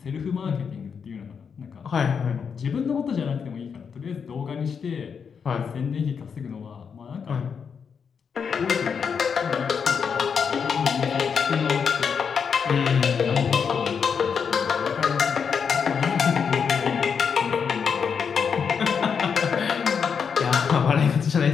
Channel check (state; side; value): quieter; right; 6.5 dB